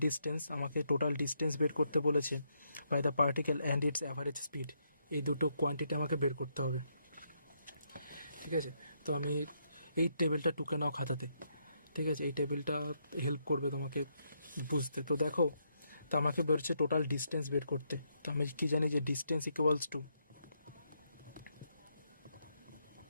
ডিস্টেন্স, আমাকে টোটাল ডিস্টেন্স বের করতে বলেছে by the particle and its average speed. এই দুটো কোয়ান্টিটি আমাকে বের করতে হবে, ঠিক আছে। তো আমি এই টেবিলটা টুকে নাও খাতাতে, ঠিক আছে। এই টেবিলটা হেল্প করবে তোমাকে বুঝতে। তো দেখো, তো আমাকে বেরোচ্ছে টোটাল ডিস্টেন্স বের করতে। তো আমি কি জানি যে distance equals to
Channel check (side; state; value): both; inverted; correlation -0.77